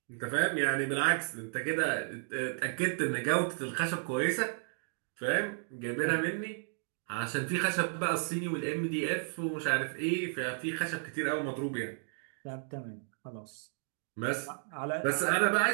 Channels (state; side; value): silent; left; 56 dB below the other